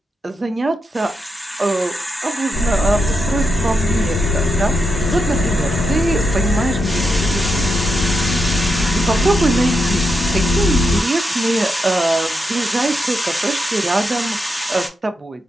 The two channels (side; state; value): both; normal; correlation 0.85